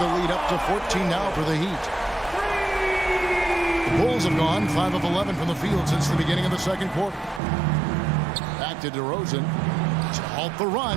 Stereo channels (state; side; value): drops out; left; at 7.4 s